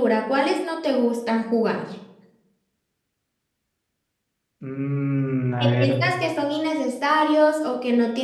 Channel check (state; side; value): identical; both; correlation 1.00